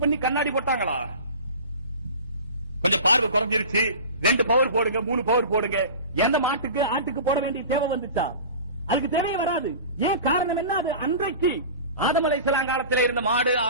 பண்ணி கண்ணாடி போட்டாங்களா? கொஞ்சம் பார்வை குறைஞ்சிருச்சு, 2 பவர் போடுங்க, 3 பவர் போடுங்க. எந்த மாட்டுக்கு ஆட்டுக்கு போட வேண்டிய தேவை வந்துச்சா? அதுக்கு தேவையே வராது. ஏன் காரணம் என்ன? அது அன்றைக்கு ஆதம் அலைஹிஸ்ஸலாம் காலத்தில் இருந்த மாடு,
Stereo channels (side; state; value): both; inverted; correlation -0.36